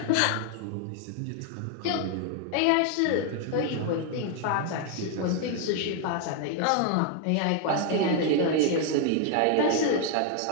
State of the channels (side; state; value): both; different; correlation 0.00